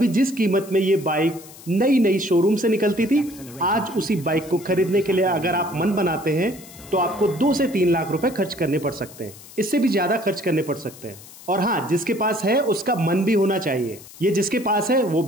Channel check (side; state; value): left; noise; hiss, 19 dB below the sound